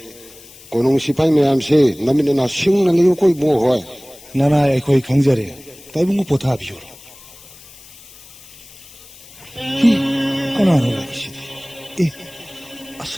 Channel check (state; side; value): noise; left; hiss, 21 dB below the sound